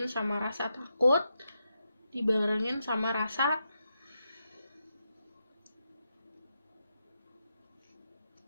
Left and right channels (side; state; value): both; inverted; correlation -0.85